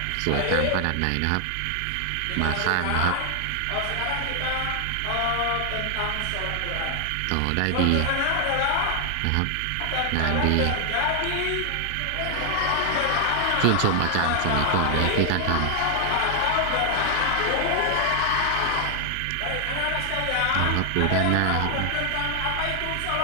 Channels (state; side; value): different; both; correlation 0.00